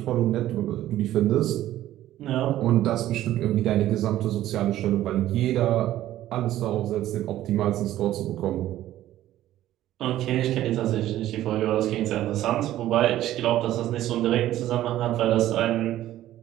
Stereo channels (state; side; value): quieter; left; 13.7 dB